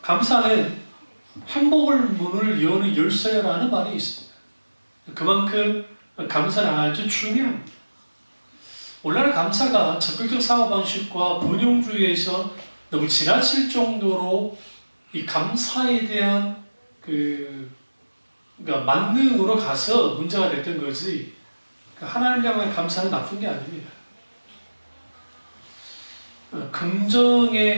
감사는 행복의 문을 여는 열쇠라는 말이 있습니다. 그만큼 감사는 아주 중요합니다. 오늘날 감사가 적극적 사고방식과 번영주의에서 너무 지나칠 정도로 이 감사에 대한 그러니까 만능으로 가서 문제가 됐던 거지, 하나님을 향한 감사는 나쁜 게 아닙니다.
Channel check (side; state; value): both; inverted; correlation -1.00